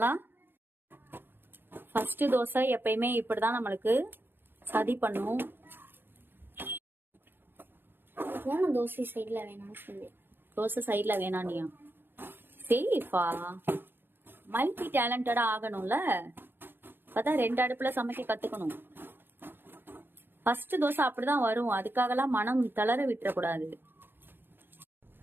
ஃபர்ஸ்ட் தோசை எப்பயுமே இப்படிதான் நம்மளுக்கு சதி பண்ணும். தோசை சைட்ல வேணாம்னு சொல்லி தோசை சைட்ல வேணானியா? சரி இஃபா, மல்டி டேலண்டடா ஆகணும்ல, அப்பதான் 2 அடுப்புல சமைக்க கத்துக்கணும். ஃபர்ஸ்ட் தோசை அப்படிதான் வரும், அதுக்காகலாம் மனம் தளர விட்டுறக்கூடாது.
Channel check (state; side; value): late; left; 0.10 ms